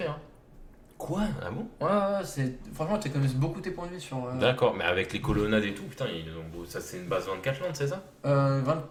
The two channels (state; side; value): identical; both; correlation 1.00